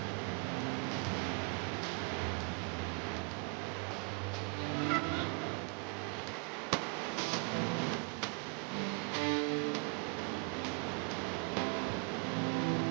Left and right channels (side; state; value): left; quieter; 34.2 dB